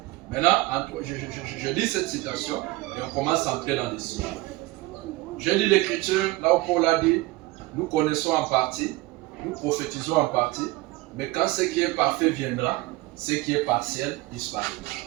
Maintenant, je lis cette citation et on commence à entrer dans les sujets. Je lis l'écriture, là où Paul a dit, nous connaissons en partie, nous prophétisons en partie, mais quand ce qui est parfait viendra, ce qui est partiel disparaîtra.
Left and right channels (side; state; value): left; quieter; 20.5 dB